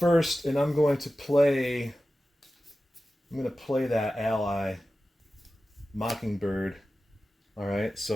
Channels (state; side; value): normal; both; correlation 0.94